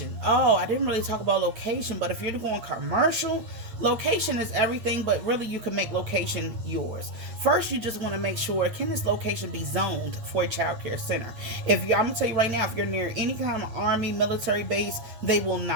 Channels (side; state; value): left; late; 8.9 ms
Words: Oh, I didn't really talk about location, but if you're going commercial, location is everything, but really you can make location yours. First, you just want to make sure, can this location be zoned for a child care center? I'm going to tell you right now, if you're near any kind of army, military base, they will